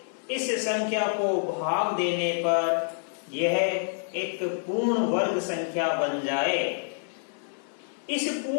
इस संख्या को भाग देने पर यह एक पूर्ण वर्ग संख्या बन जाए। इस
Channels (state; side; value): silent; right; digital silence